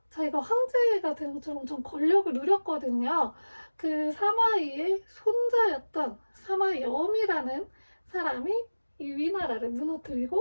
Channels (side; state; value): both; inverted; correlation -1.00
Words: 자기가 황제가 된 것처럼 엄청 권력을 누렸거든요. 그 사마이의 손자였던 사마염이라는 사람이 이 위나라를